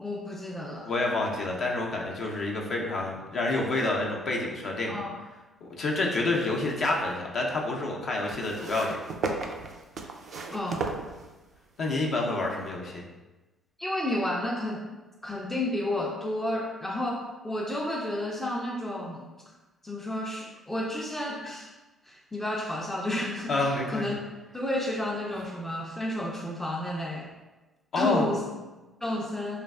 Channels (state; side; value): normal; both; correlation 0.68